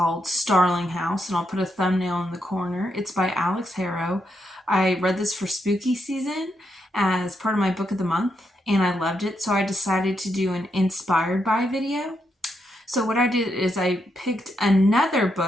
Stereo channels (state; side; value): normal; both; correlation 0.81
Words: Starling House, and I'll put a thumbnail in the corner. It's by Alix Harrow. I read this for spooky season as part of my book of the month, and I loved it, so I decided to do an inspired by video. So what I did is I picked another